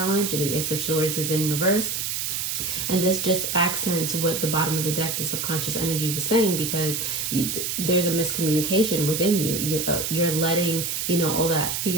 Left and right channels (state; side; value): noise; right; hiss, 2 dB below the sound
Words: and the Ace of Swords is in reverse. And this just accents what the bottom of the deck, the subconscious energy, was saying, because there's a miscommunication within you. You're letting, you know, all that